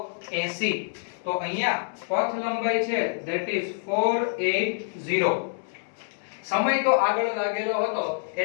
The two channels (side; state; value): right; silent; digital silence